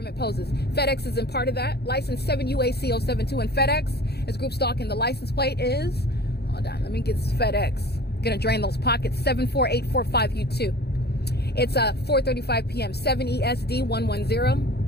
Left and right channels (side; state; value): right; late; 0.47 ms